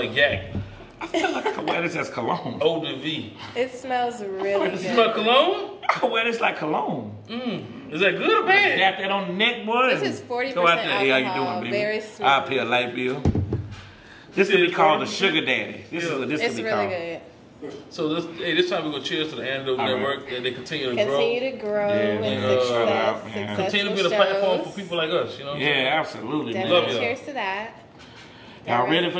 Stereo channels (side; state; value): both; identical; correlation 1.00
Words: yak. I feel like I wear this as cologne. Eau de vie. It smells really good. It smells cologne? I wear this like cologne. Is that good or bad? Got that on the neck, boy. This is 40% Go out there. alcohol. How you doing, baby? Very smooth. I'll pay a light bill. This could be called the sugar daddy. This is what this it's could be really called. good. So this time we're gonna cheers to the Antidote Network that they continue to grow. Continue to grow and success. Continue to be the platform for people like us, you know? Yeah, absolutely. Definitely man. cheers to that. Y'all ready for